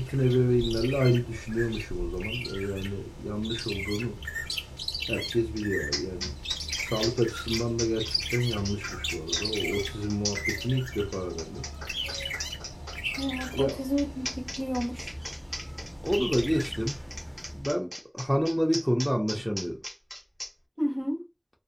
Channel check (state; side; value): identical; both; correlation 1.00